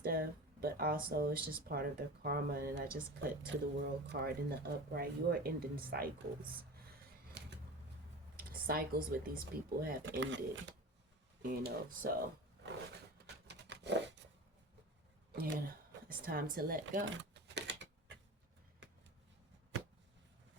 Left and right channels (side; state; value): both; normal; correlation 0.32